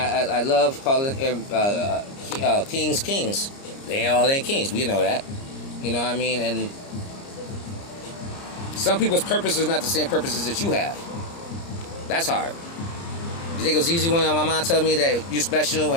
love calling kings kings. They all ain't kings, we know that. You know what I mean? And some people's purpose is not the same purposes that you have. That's hard. You think it was easy when my mom told me that you're special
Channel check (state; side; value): late; right; 30 ms